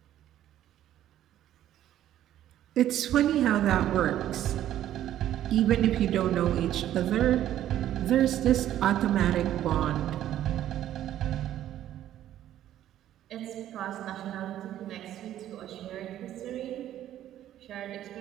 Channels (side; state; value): left; quieter; 12.1 dB